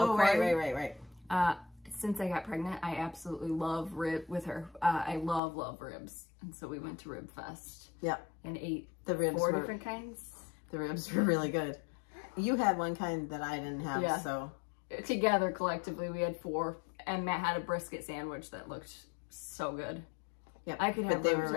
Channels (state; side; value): drops out; right; at 5.4 s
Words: Right. Since I got pregnant, I absolutely love with her. I love ribs. And so we went to Rib Fest. Yep. And ate the ribs 4 different kinds. The ribs were really good. You had one kind that I didn't have, so. Together, collectively, we had 4. And Matt had a brisket sandwich that looked so good. Yeah, I could have they were